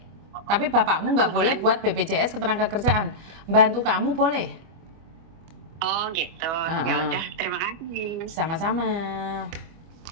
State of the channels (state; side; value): late; left; 25 ms